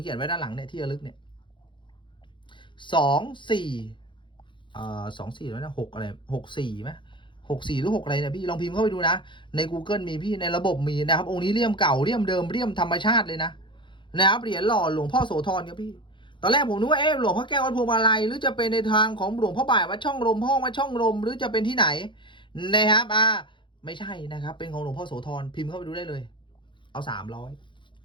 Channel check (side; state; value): right; late; 0.23 ms